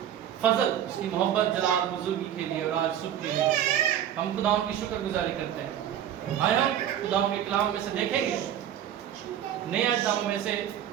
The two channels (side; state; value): left; quieter; 10.4 dB